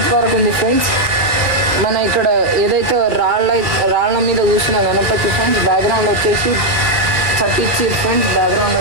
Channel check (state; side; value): late; left; 1.9 ms